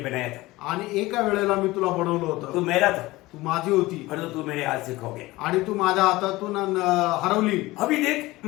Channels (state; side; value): quieter; right; 19.5 dB